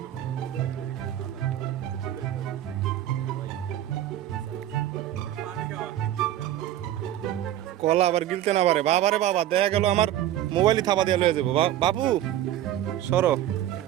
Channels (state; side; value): quieter; left; 12.5 dB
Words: কলা আবার গিলতে না পারে বাবারে বাবা, দেখা গেল আমার মোবাইলই থাপা দিয়ে লয়ে যাবো। বাবু সরো।